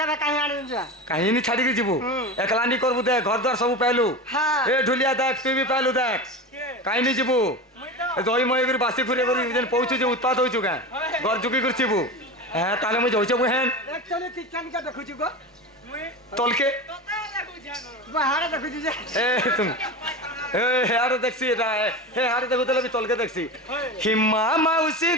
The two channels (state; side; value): normal; both; correlation 0.26